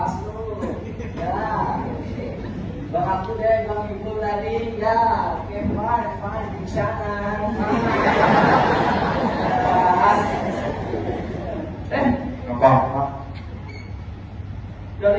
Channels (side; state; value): both; identical; correlation 1.00